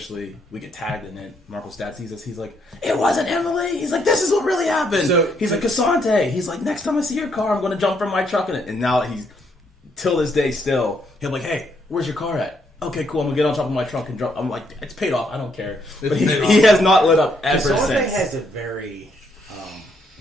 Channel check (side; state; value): both; normal; correlation 0.73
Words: we get tagged in it. Marco's dad sees us. He's like, "It wasn't Emily." He's like, "This is what really happened." So- he's like, "Casante." He's like, "Next time I see your car, I'm going to jump from my truck in it." And now he's till this day still. He'll be like, "Hey, where's your car at?" Okay, cool. I'm gonna get on top of my truck and drop. I'm like, it's paid off. I don't care. But he has not lit up ever Casante since. has a very